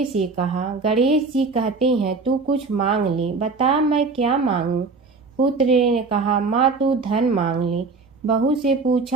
से कहा, गणेश जी कहते हैं तू कुछ मांग ले, बता मैं क्या मांगूं। पुत्र ने कहा, माँ तू धन मांग ले। बहू से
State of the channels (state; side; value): quieter; left; 4.2 dB